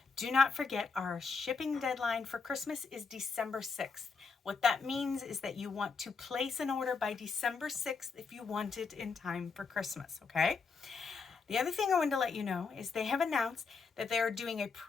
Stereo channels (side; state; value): right; quieter; 4.9 dB